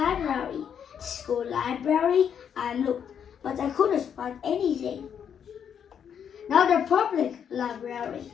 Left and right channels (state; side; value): quieter; right; 8.1 dB